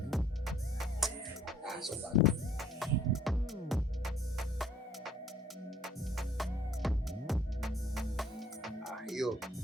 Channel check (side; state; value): both; normal; correlation 0.59